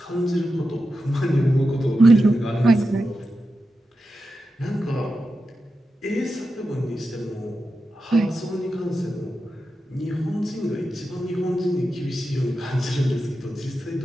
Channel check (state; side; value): normal; both; correlation 0.90